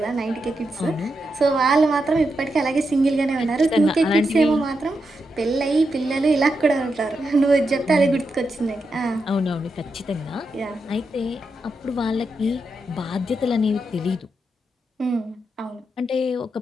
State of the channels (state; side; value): normal; both; correlation 0.85